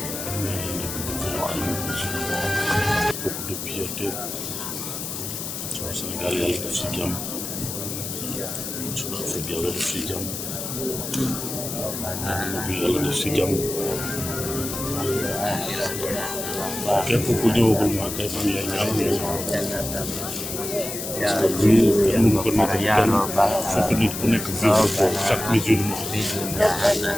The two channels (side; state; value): left; noise; hiss, 6 dB below the sound